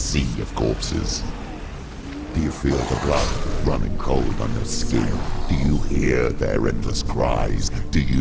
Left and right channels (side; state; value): both; identical; correlation 1.00